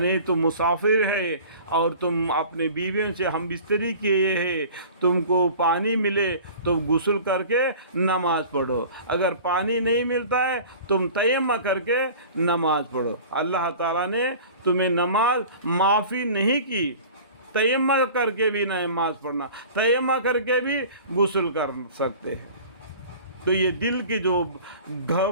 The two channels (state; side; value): inverted; both; correlation -0.42